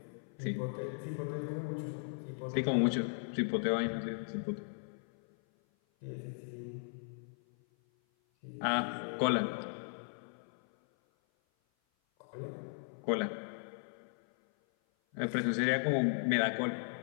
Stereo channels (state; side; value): silent; right; 53 dB below the other